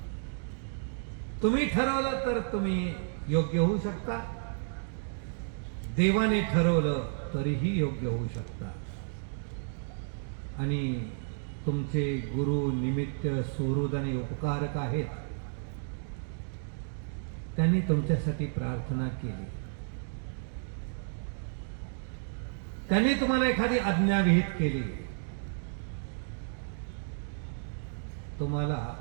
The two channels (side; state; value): left; silent; digital silence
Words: तुम्ही ठरवलं तर तुम्ही योग्य होऊ शकता, देवाने ठरवलं तरीही योग्य होऊ शकता. आणि तुमचे गुरु निमित्त सुहृद आणि उपकारक आहेत. त्यांनी तुमच्यासाठी प्रार्थना केली, त्यांनी तुम्हाला एखादी आज्ञा विहित केली, तुम्हाला